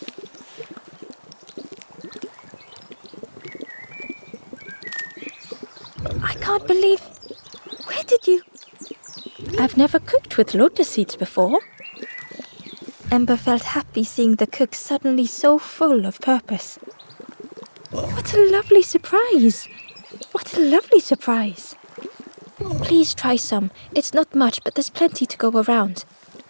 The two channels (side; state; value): both; inverted; correlation -1.00